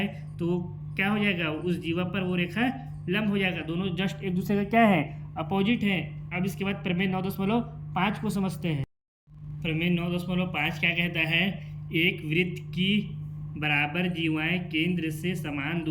तो क्या हो जाएगा, उस जीवा पर वो रेखा लंब हो जाएगा। दोनों जस्ट एक दूसरे का क्या है, अपोजिट है। अब इसके बाद प्रमेय 9.5 को समझते हैं। प्रमेय 9.5 क्या कहता है, एक वृत्त की बराबर जीवाएं केंद्र से समान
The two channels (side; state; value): both; identical; correlation 1.00